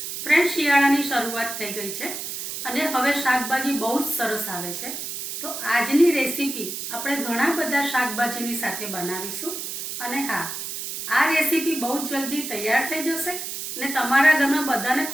ફ્રેન્ડ, શિયાળાની શરૂઆત થઈ ગઈ છે અને હવે શાકભાજી બહુ જ સરસ આવે છે। તો આજની રેસીપી આપણે ઘણા બધા શાકભાજીની સાથે બનાવીશું અને હા, આ રેસીપી બહુ જ જલ્દી તૈયાર થઈ જશે અને તમારા ઘરમાં બધાને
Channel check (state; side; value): noise; right; hiss, 6 dB below the sound